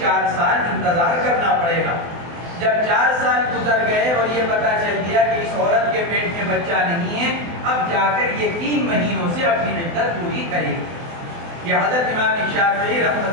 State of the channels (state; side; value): late; left; 24 ms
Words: سال انتظار کرنا پڑے گا۔ جب 4 سال گزر گئے اور یہ پتہ چل گیا کہ اس عورت کے پیٹ میں بچہ نہیں ہے، اب جا کر یہ 3 مہینوں سے اپنی عدت پوری کرے گی۔ یہ حضرت امام شافعی